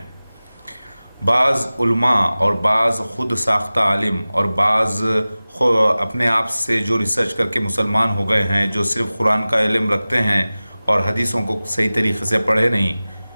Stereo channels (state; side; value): inverted; both; correlation -0.97